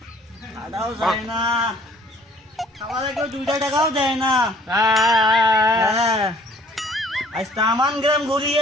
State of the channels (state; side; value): normal; both; correlation 0.56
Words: খাওয়াও যায় না, খাওয়ালে কেউ 2 টাকাও দেয় না। হ্যাঁ, আজ তামান গ্রাম